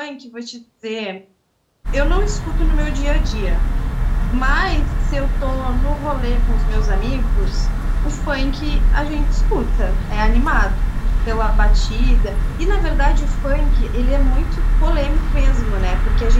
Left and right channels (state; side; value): identical; both; correlation 1.00